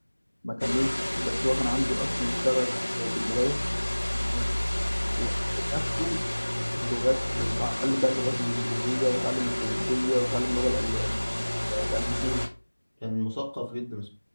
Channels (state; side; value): inverted; both; correlation -1.00